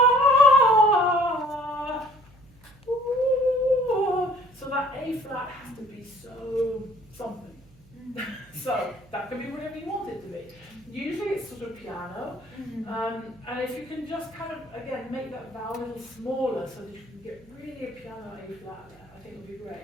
so that A flat has to be so something. So that can be whatever you want it to be. Usually it's sort of piano, and if you can just kind of, again, make that vowel a little smaller so that you can get really a piano A flat there, I think would be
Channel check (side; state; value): right; noise; hum, 26 dB below the sound